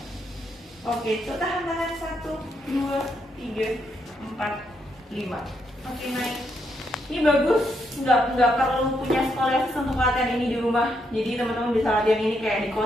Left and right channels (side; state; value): both; normal; correlation 0.78